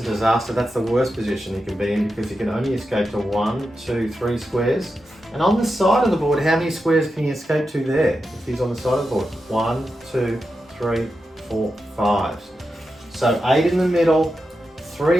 disaster. That's the worst position he can be in because he can only escape to 1, 2, 3 squares. And on the side of the board, how many squares can he escape to there if he's on the side of the board? 1, 2, 3, 4, 5. So 8 in the middle,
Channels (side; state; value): both; normal; correlation 0.89